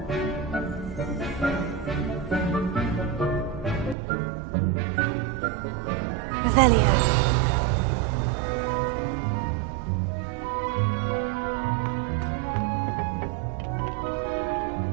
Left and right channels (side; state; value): left; drops out; at 4.0 s